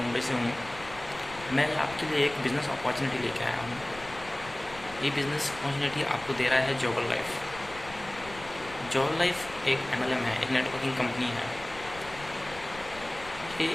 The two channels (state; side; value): noise; left; rumble, 17 dB below the sound